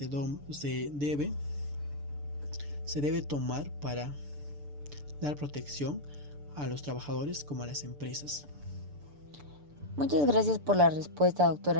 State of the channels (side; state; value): left; late; 6.9 ms